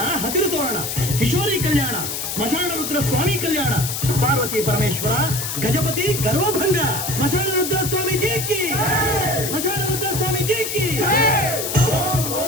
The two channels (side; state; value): left; noise; hiss, 4 dB below the sound